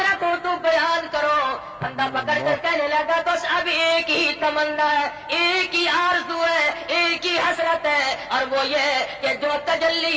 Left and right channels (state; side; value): identical; both; correlation 1.00